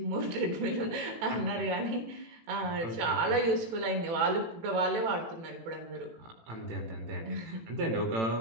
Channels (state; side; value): late; left; 18 ms